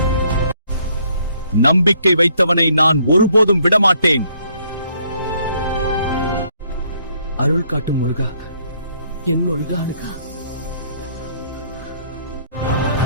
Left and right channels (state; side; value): inverted; both; correlation -0.67